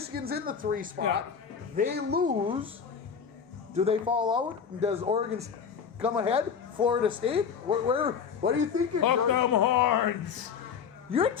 in the 3 spot. Yeah. They lose. Do they fall out? Does Oregon come ahead? Florida State? What are you thinking, Hook George? 'em horns. You're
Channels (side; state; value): right; quieter; 6.7 dB